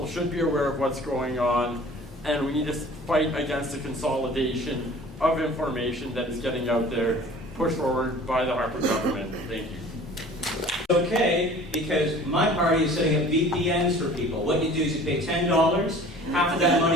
should be aware of what's going on, and we need to fight against the consolidation of information that is getting out there, pushed forward by the Harper government. Thank you. Okay, because my party is setting up VPNs for people. What you do is you pay $10, half of that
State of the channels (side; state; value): both; normal; correlation 0.46